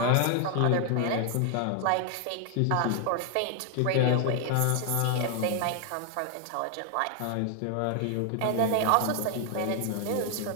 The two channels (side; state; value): both; different; correlation 0.00